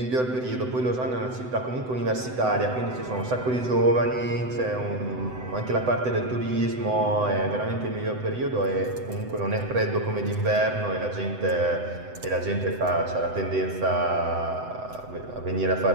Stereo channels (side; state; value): left; late; 7.9 ms